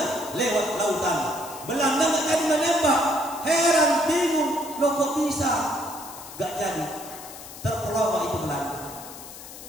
lewat lautan. Belanda nggak jadi menembak. Heran, bingung, loh kok bisa? Gak jadi. Terpelawak itu Belanda.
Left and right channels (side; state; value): left; noise; hiss, 14 dB below the sound